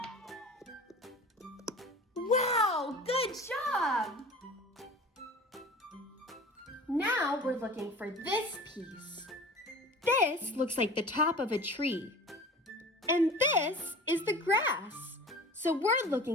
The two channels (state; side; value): normal; both; correlation 0.40